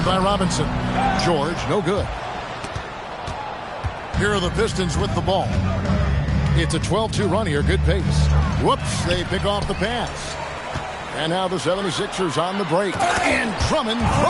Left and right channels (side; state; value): both; identical; correlation 1.00